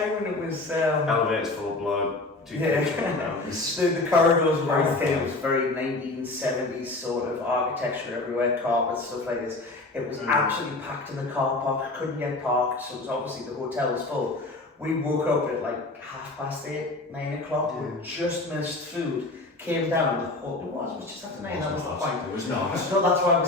and it was Elevators full of blood. The corridors were very thin. It was very 1970s sort of architecture everywhere, carpets, stuff like this. It was absolutely packed in the car park. Couldn't get parked, so it was obviously the hotel was full. We woke up at like 8:30, 9 o'clock. We just missed food. Came down. It was just after 9. That was the point. It was not. No, that's why we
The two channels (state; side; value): quieter; right; 3.0 dB